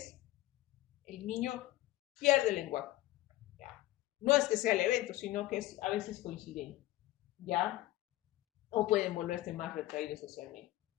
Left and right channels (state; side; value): quieter; right; 16.2 dB